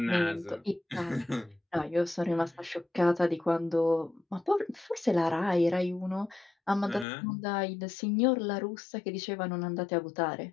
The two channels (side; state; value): right; drops out; at 7.1 s